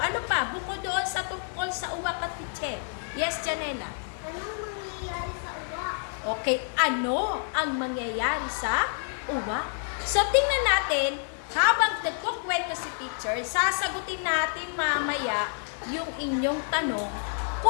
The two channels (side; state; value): right; silent; 59 dB below the other